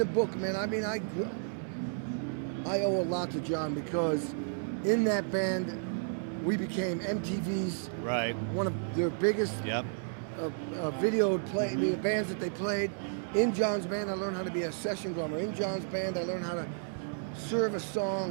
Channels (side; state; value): left; silent; 56 dB below the other